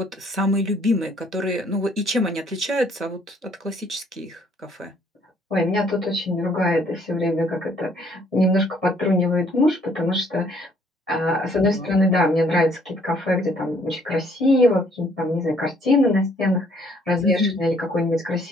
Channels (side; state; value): both; normal; correlation 0.64